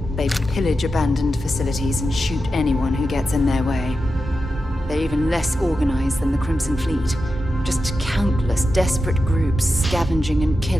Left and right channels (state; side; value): normal; both; correlation 0.90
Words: They pillage abandoned facilities and shoot anyone who gets in their way. They're even less organized than the Crimson Fleet. Just countless desperate groups scavenging and